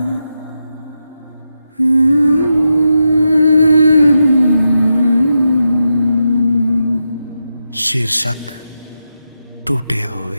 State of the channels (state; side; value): inverted; both; correlation -0.87